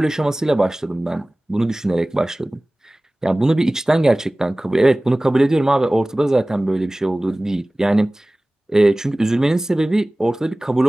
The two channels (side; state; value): both; normal; correlation 0.98